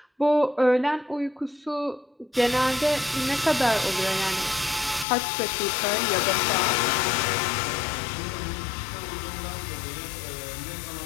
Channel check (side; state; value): right; drops out; at 5.1 s